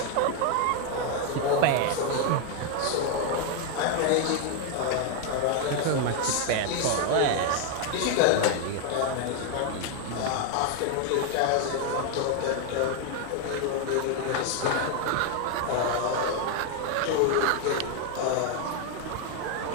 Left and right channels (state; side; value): different; both; correlation 0.00